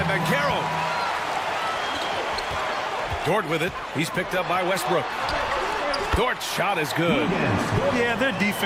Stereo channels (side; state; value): both; identical; correlation 1.00